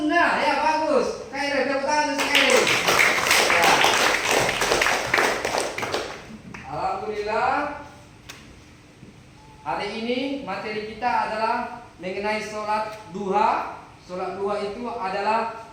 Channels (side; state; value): both; identical; correlation 1.00